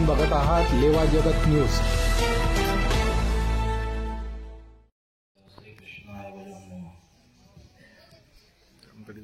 बघत आहात लेवा जगत न्यूज.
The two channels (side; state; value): both; identical; correlation 1.00